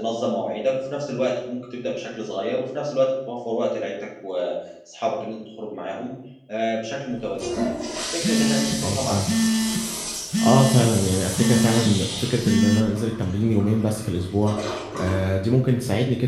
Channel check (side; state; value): both; identical; correlation 1.00